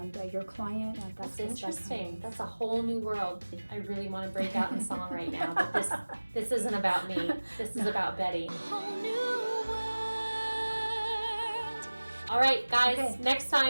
your client. And That's just interesting. That's a whole new world. I really want to break out in song right now, but this isn't about me. This is about Betty. All right, guys, Okay. next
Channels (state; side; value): inverted; both; correlation -1.00